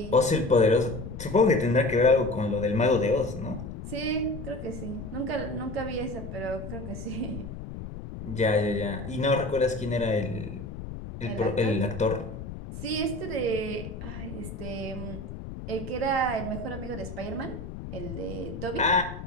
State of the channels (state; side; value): noise; left; rumble, 9 dB below the sound